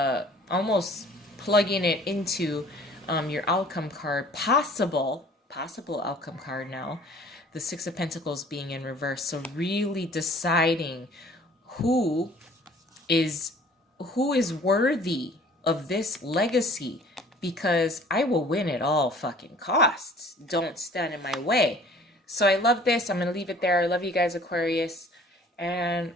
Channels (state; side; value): normal; both; correlation 0.52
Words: almost plugging it into your outcome card, possible outcome card now, the Six of Pentacles being in reverse. So really deciding who is worthy of this legacy, because I will win at all fucking costs. Don't stand in my way. So I love this. I'm going to leave it there. I love you guys, Aquarius. And